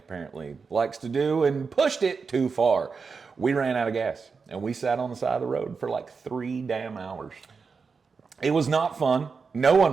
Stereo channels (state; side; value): quieter; left; 5.1 dB